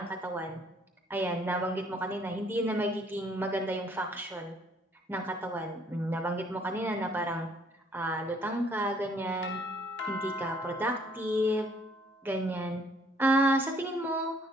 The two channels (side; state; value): both; normal; correlation 0.62